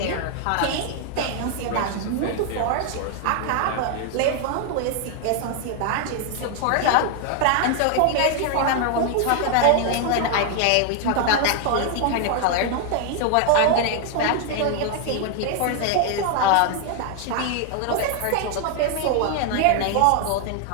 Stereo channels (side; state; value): both; different; correlation 0.00